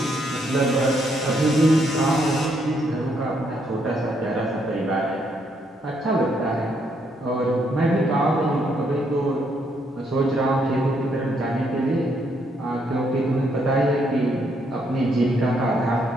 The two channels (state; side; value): normal; both; correlation 0.74